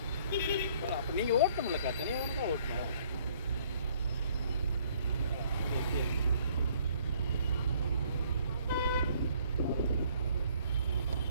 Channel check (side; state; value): both; inverted; correlation -0.62